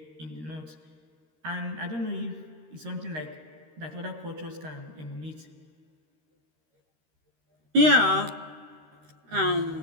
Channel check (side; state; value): left; late; 13 ms